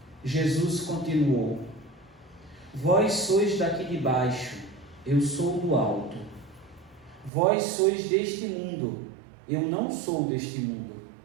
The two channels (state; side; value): drops out; left; at 7.3 s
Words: Jesus continuou: Vós sois daqui de baixo, eu sou do alto. Vós sois deste mundo, eu não sou deste mundo.